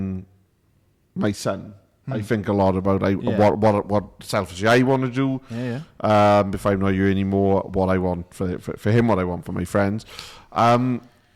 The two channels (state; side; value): identical; both; correlation 1.00